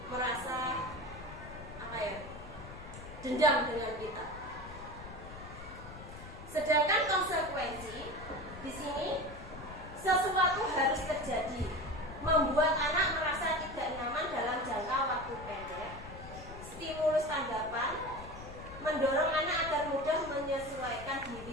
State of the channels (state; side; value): noise; left; rumble, 14 dB below the sound